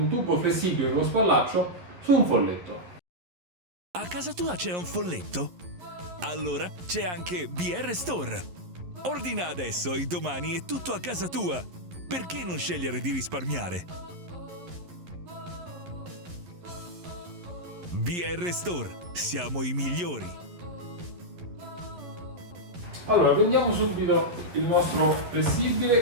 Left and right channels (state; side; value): late; left; 11 ms